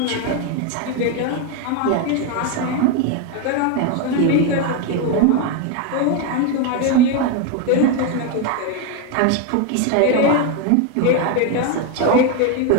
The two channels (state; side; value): different; both; correlation 0.02